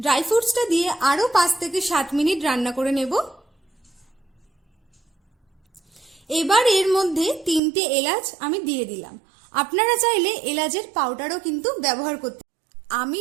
ফ্রুটসটা দিয়ে আরও 5 থেকে 7 মিনিট রান্না করে নেব। এবার এর মধ্যে 3টে এলাচ আমি দিয়ে দিলাম। আপনারা চাইলে এলাচের পাউডারও কিন্তু ব্যবহার করতে। আমি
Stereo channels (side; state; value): left; drops out; at 7.6 s